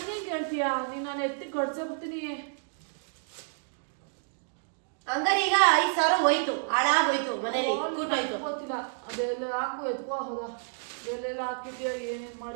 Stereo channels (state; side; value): silent; left; digital silence